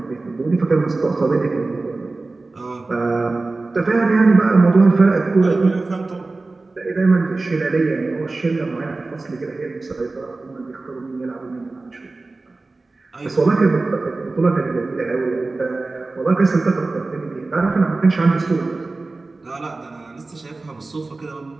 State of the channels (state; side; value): quieter; left; 3.4 dB